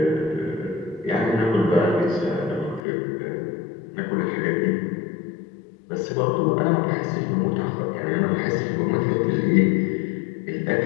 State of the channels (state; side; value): drops out; right; at 2.8 s